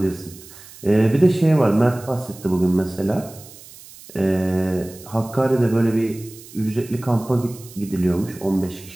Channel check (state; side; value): noise; right; hiss, 19 dB below the sound